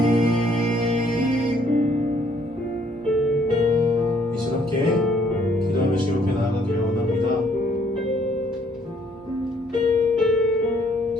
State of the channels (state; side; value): normal; both; correlation 0.65